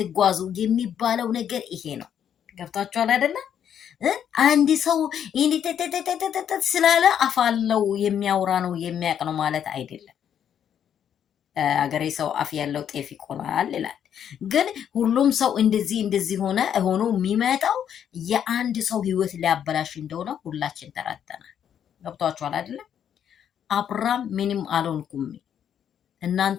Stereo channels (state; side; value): quieter; right; 9.1 dB